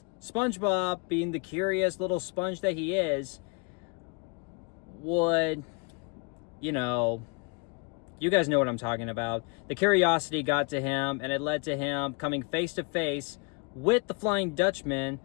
SpongeBob, being the curious little sponge that he is, would, you know, you guys know what I'm talking about. The curiosity got to him, and it led to him coming face to face with the Flying Dutchman,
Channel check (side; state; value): right; quieter; 32.1 dB